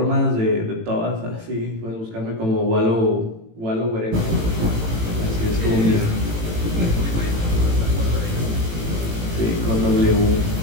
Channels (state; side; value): late; left; 18 ms